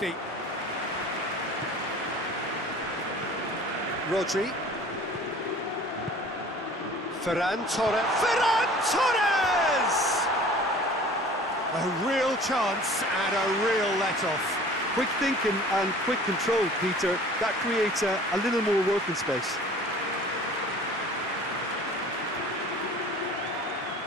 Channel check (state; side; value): normal; both; correlation 0.46